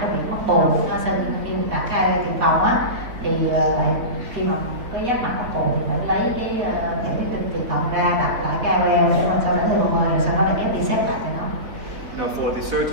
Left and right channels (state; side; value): late; left; 4.0 ms